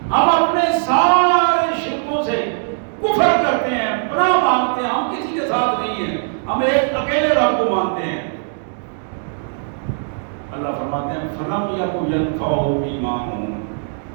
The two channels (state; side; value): silent; left; digital silence